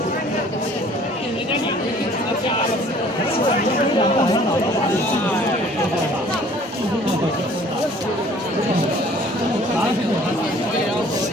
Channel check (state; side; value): normal; both; correlation 0.54